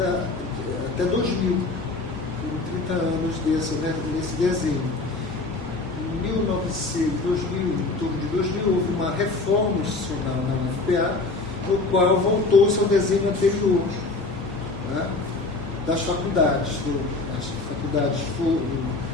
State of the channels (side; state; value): right; quieter; 3.5 dB